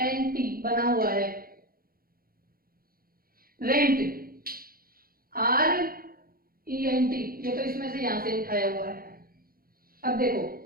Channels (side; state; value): left; late; 0.43 ms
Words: बना हुआ है। रेंट RENT, ये तो इसमें से यहां से उठाया हुआ है। अब देखो